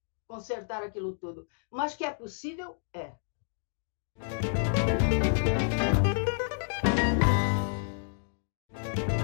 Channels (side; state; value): right; silent; digital silence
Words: consertar aquilo tudo. Mas que é possível, é.